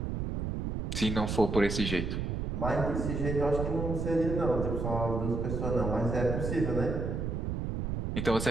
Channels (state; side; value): noise; right; rumble, 2 dB below the sound